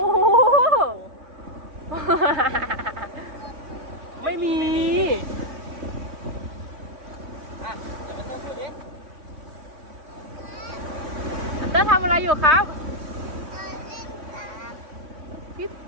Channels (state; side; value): late; left; 3.3 ms